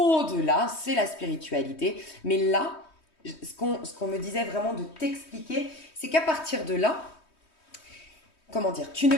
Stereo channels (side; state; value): right; late; 3.2 ms